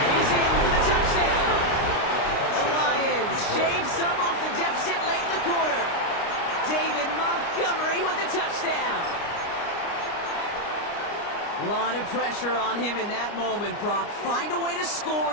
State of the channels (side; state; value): right; late; 29 ms